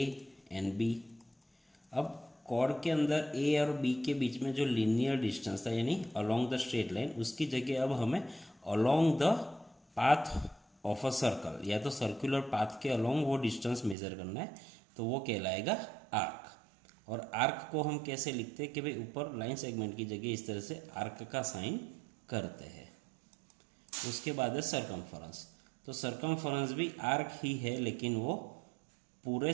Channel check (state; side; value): drops out; left; at 14.0 s